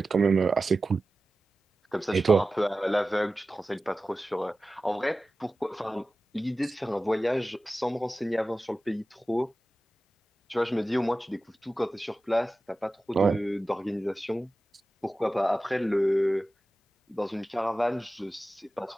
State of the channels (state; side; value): normal; both; correlation 0.95